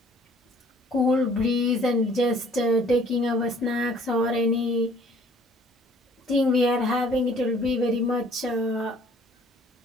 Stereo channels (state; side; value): normal; both; correlation 0.56